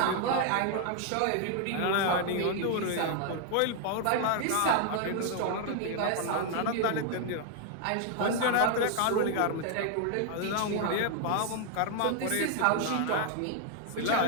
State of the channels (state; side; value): different; both; correlation 0.00